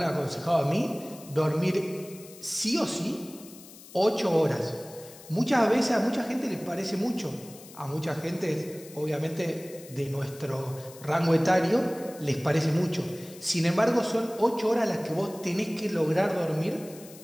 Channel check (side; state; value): left; noise; hiss, 19 dB below the sound